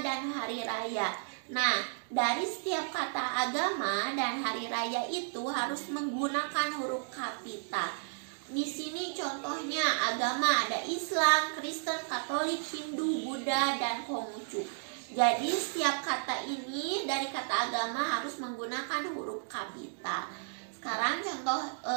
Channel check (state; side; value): silent; left; digital silence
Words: hari raya. Nah, dari setiap kata agama dan hari raya itu harus menggunakan huruf kapital. Di sini contohnya agama ada Islam, Kristen, Katolik, Hindu, Buddha, dan Konghucu. Jadi setiap kata ini dari kata agama harus menggunakan huruf kapital. Sekarang contoh